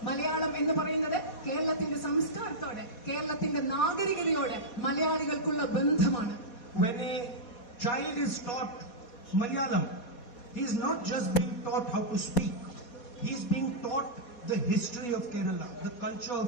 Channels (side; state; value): right; late; 4.2 ms